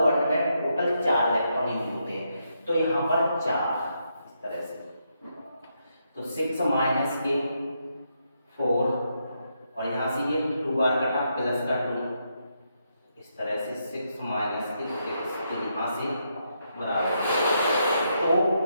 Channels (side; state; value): both; inverted; correlation -0.80